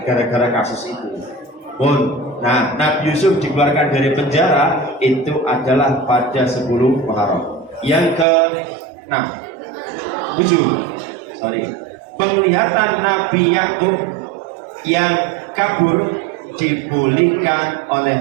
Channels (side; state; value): left; drops out; at 8.2 s